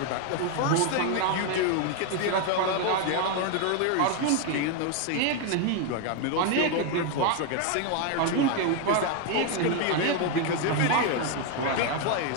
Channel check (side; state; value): both; different; correlation 0.01